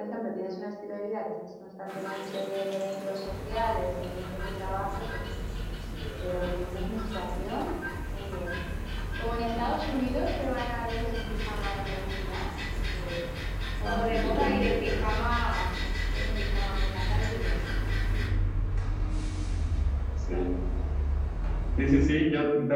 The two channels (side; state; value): both; identical; correlation 1.00